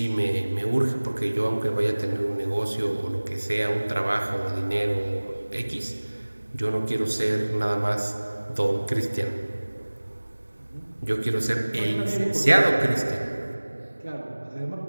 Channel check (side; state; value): both; inverted; correlation -1.00